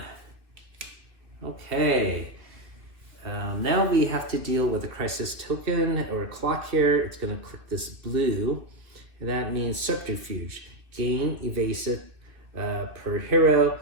Okay. Now we have to deal with a crisis token or a clock here. It's going to click this blue, and that means subterfuge. Gain evasive per hero.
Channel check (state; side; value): late; left; 2.3 ms